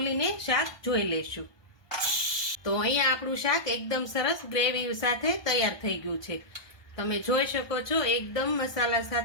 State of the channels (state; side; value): late; right; 1.2 ms